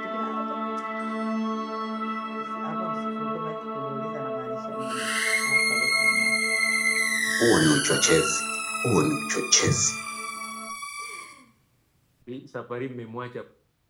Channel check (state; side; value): identical; both; correlation 1.00